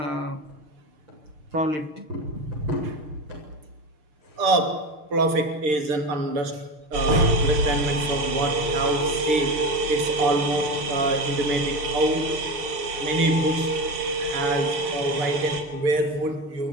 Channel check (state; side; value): late; left; 6.6 ms